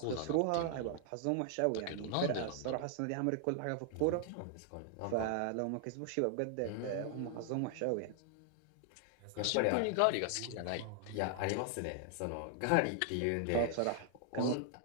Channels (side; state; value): both; different; correlation 0.00